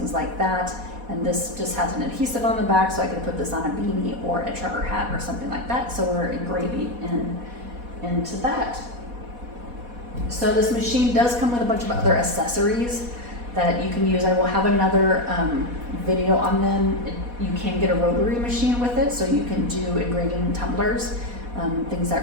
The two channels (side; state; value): left; late; 4.1 ms